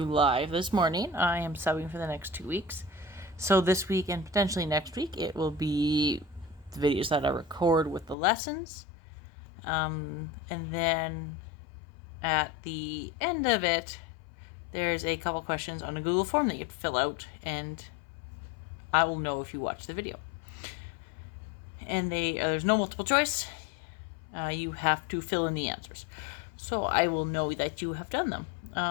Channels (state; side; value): drops out; right; at 8.2 s